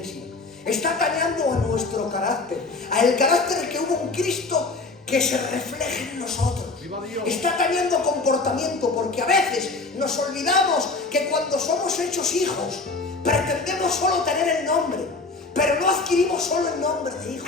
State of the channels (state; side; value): quieter; right; 3.7 dB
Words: Está atañando a nuestro carácter, a el carácter que hubo en Cristo, que se refleje en nosotros. Está atañando comportamiento, porque a veces nos olvidamos que cuando somos hechos hijos, pretendemos solo tener el nombre, pero no adquirimos solo el nombre de hijo,